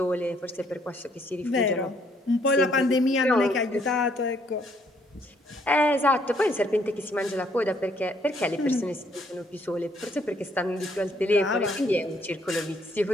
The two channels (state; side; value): normal; both; correlation 0.67